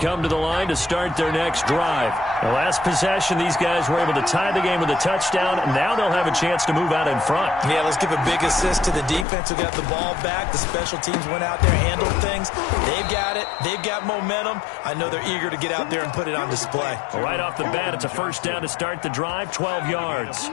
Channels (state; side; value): drops out; right; at 9.2 s